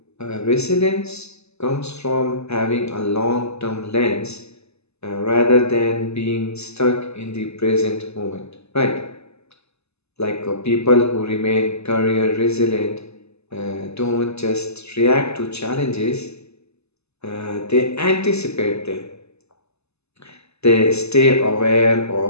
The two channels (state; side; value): late; right; 0.80 ms